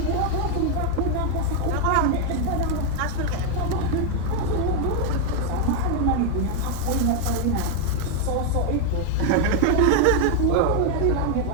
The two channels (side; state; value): both; different; correlation 0.01